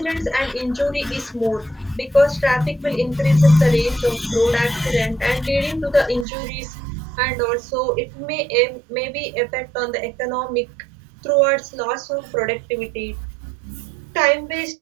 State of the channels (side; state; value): left; drops out; at 6.2 s